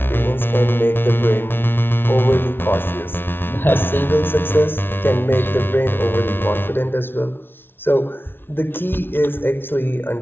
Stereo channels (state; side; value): late; right; 0.11 ms